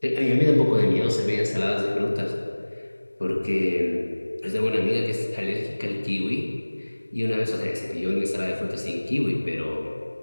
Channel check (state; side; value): inverted; both; correlation -1.00